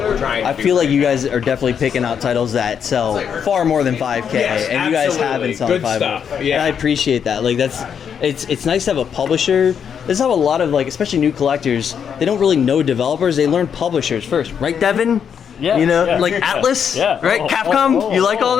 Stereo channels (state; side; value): quieter; right; 7.6 dB